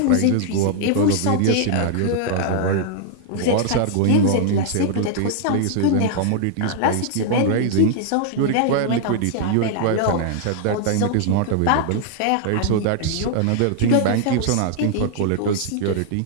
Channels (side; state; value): both; different; correlation 0.00